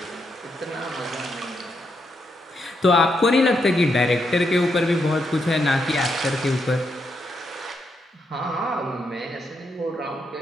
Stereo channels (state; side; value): normal; both; correlation 0.80